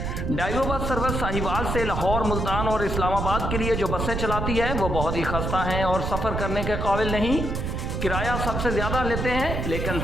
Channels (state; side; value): noise; right; rumble, 2 dB below the sound